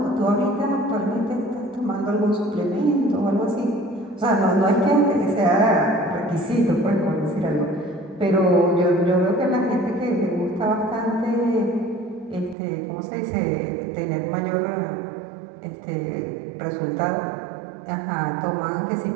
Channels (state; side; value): drops out; left; at 12.6 s